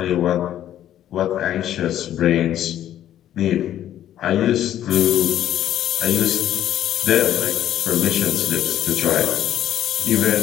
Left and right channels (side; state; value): right; quieter; 11.7 dB